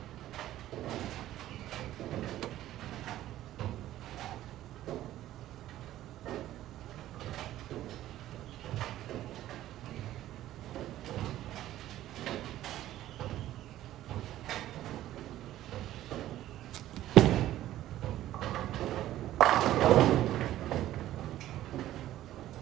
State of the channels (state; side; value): quieter; left; 13.7 dB